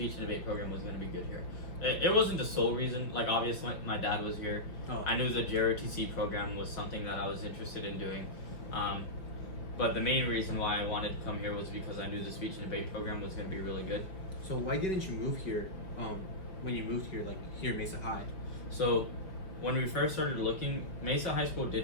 and debate program was going to be good here. It wasn't the sole reason. Like obviously my dad was here. I knew the Jrotc program was something that I was interested in doing. But the main reason why I wanted to come here was because I knew the speech and debate program was going to be really good. So why didn't you move here when you moved here, like here Mesa High? So when we first started looking, Mesa High School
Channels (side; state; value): right; late; 5.3 ms